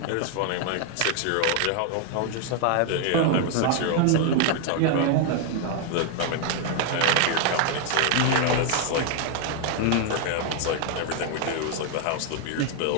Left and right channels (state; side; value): different; both; correlation 0.00